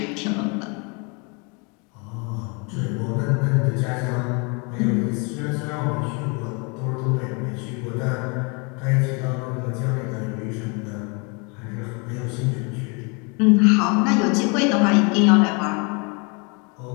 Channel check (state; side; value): quieter; right; 32.2 dB